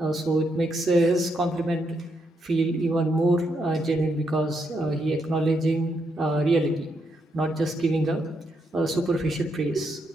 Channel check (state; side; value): normal; both; correlation 0.79